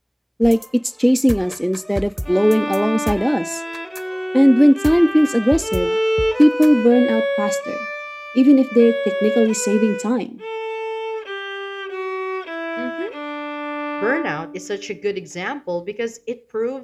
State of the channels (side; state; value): both; identical; correlation 1.00